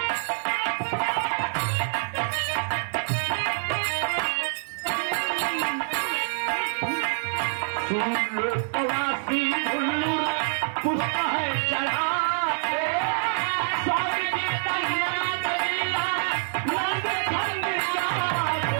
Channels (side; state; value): left; silent; digital silence